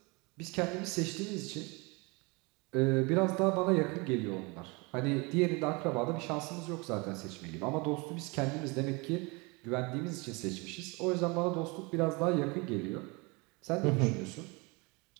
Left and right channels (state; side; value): quieter; left; 27.7 dB